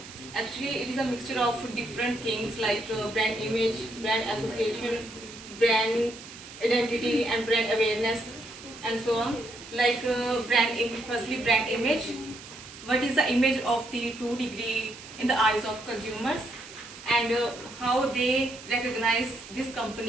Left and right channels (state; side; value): noise; right; hiss, 16 dB below the sound